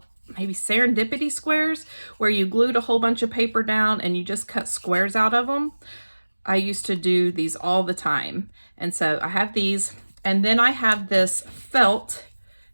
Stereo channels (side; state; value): both; inverted; correlation -1.00